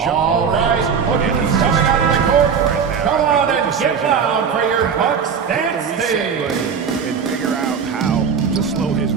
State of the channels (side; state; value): left; quieter; 6.5 dB